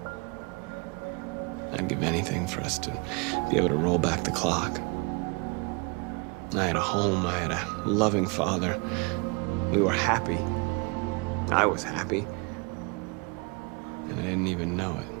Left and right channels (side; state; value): left; quieter; 29.7 dB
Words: I'd give anything for us to be able to roll back the clock. I had a home, I had a loving father. We were happy. I was happy. And I didn't even know it.